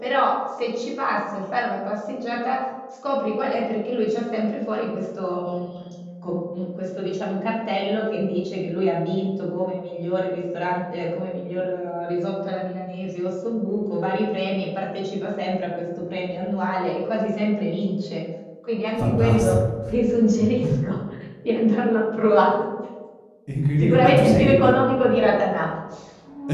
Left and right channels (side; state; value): both; identical; correlation 1.00